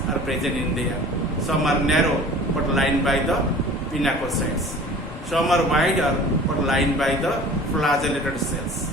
are present in there. Some are narrow but lined by the pinacocytes. Some are wider but lined by the flagellated cells.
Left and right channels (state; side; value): normal; both; correlation 0.44